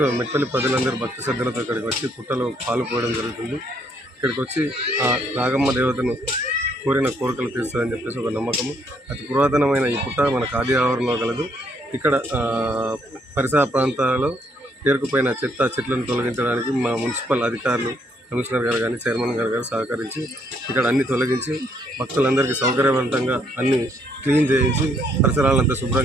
మెట్పల్లి ప్రజలందరూ భక్తి శ్రద్ధలతో ఇక్కడికి వచ్చి పుట్టలో పాలు పోయడం జరుగుతుంది. ఇక్కడికి వచ్చి ఆ నాగమ్మ దేవతను కోరిన కోరికలు తీరుస్తుందని చెప్పేసి ఒక నమ్మకము. అతి పురాతనమైన ఈ పుట్ట మన ఖాదీ ఆవరణలో కలదు. ఇక్కడ పరిసర ప్రాంతాలలో పేరుకుపోయిన చెట్లను తొలగించడానికి మా మున్సిపల్ అధికారులు, కమిషనర్ గారు కానీ చైర్మన్ గారు సహకరించి ఇక్కడ అన్ని తొలగించి భక్తులందరికీ సౌకర్యవంతంగా అన్ని క్లీన్ చేయించి పరిసరాలంతా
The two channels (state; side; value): normal; both; correlation 0.70